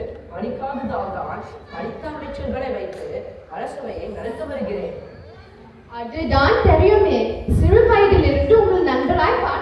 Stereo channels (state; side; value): identical; both; correlation 1.00